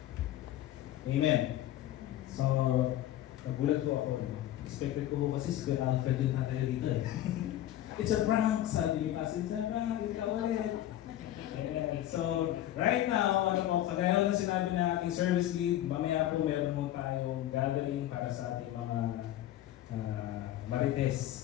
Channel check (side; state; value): right; quieter; 13.1 dB